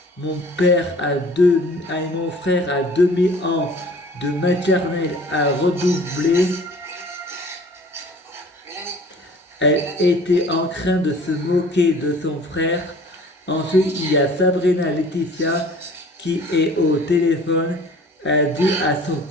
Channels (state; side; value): normal; both; correlation 0.48